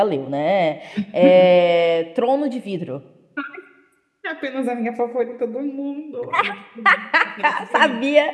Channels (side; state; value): both; identical; correlation 1.00